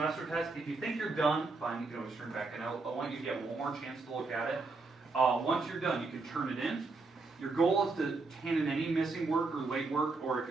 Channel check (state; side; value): quieter; left; 3.8 dB